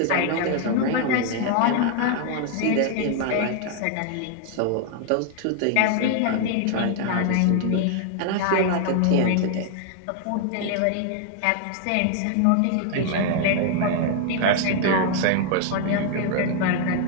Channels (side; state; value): both; different; correlation 0.00